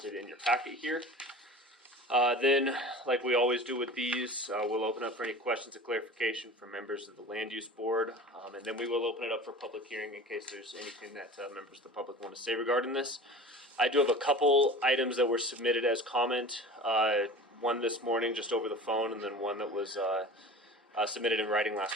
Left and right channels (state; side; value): normal; both; correlation 0.38